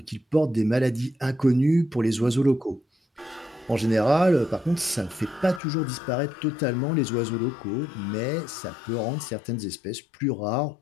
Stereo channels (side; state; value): right; drops out; at 5.6 s